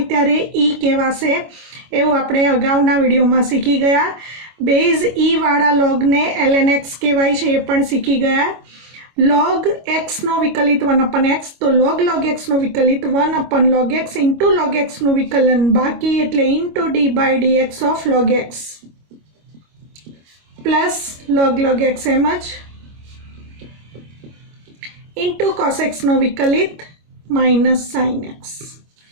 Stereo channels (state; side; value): late; left; 25 ms